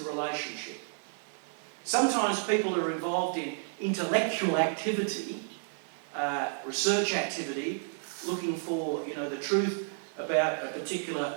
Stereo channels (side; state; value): left; silent; digital silence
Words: relationship. Sometimes people are involved in intellectual activity, research activity, looking for, the truth about a particular